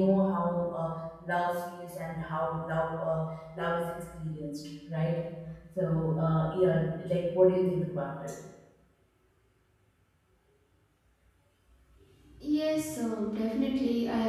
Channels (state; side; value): identical; both; correlation 1.00